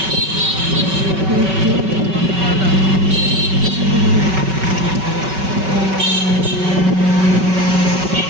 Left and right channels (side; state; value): left; late; 5.3 ms